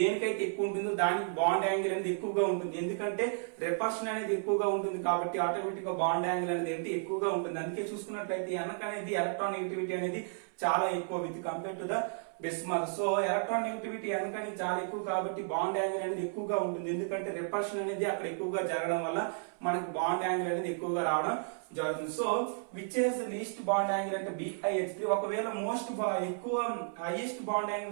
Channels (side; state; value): left; silent; 56 dB below the other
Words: ఎక్కువ ఉంటుందో దానికి బాండ్ యాంగిల్ అనేది ఎక్కువగా ఉంటుంది. ఎందుకంటే రిపల్షన్ అనేది ఎక్కువగా ఉంటుంది కాబట్టి ఆటోమేటిక్ గా బాండ్ యాంగిల్ అనేది ఏంటి ఎక్కువగా ఉంటుంది. అందుకే చూసుకున్నట్లయితే ఎనక్ అనేది ఎలక్ట్రాన్ నెగటివిటీ అనేది చాలా ఎక్కువ with compare to the bismuth. So electron negativity ఎనక్ అనేది చాలా ఎక్కువ కాబట్టి బాండ్ యాంగిల్ అనేది ఎక్కువగా ఉంటుంది. ఎందుకంటే రిపల్షన్ అనేది అక్కడ ఎక్కువగా జరగడం వల్ల మనకు బాండ్ యాంగిల్ అనేది ఎక్కువగా రావడం జరుగుతుంది. So which is least bond angle అంటే BiH3. ఒకవేళ మోస్ట్ ఎక్కువ హైయెస్ట్ బాండ్